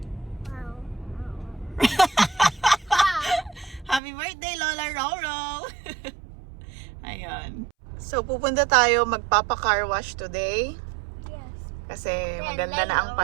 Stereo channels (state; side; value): drops out; left; at 4.0 s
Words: Wow. Happy birthday, Lola Roro! Ayun. So, pupunta tayo magpapa-car wash today. Yes. Kasi Then maganda na ang